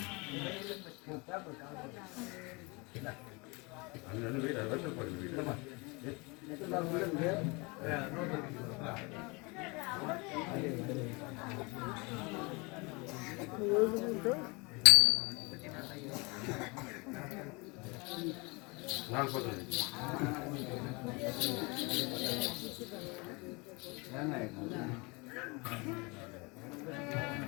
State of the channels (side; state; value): right; quieter; 28.0 dB